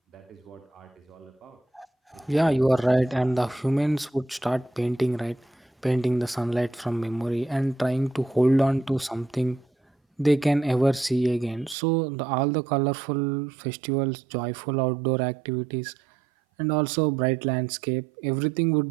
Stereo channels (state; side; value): drops out; left; at 11.8 s